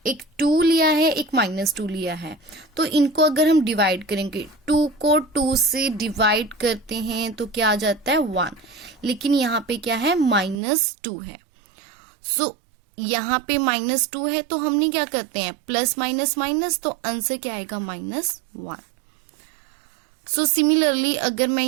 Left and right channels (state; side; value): drops out; left; at 10.6 s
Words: एक 2 लिया है, एक -2 लिया है. तो इनको अगर हम डिवाइड करेंगे, 2 को 2 से डिवाइड करते हैं तो क्या आ जाता है, 1. लेकिन यहाँ पे क्या है, -2 है. सो यहाँ पे -2 है, तो हमने क्या करते हैं, प्लस माइनस माइनस, तो आंसर क्या आएगा, -1. सो सिमिलरली अगर मैं